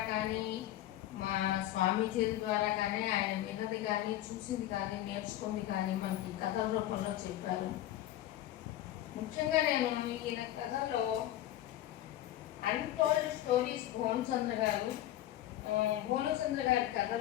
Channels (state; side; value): quieter; right; 13.6 dB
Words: కానీ, మా స్వామీజీల ద్వారా కానీ, ఆయన విన్నది కానీ, చూసింది కానీ, నేర్చుకుంది కానీ మనకి కథల రూపంలో చెప్పారు. ముఖ్యంగా నేను ఈయన కథలో అన్టోల్డ్ స్టోరీస్ భోమచంద్ర గారి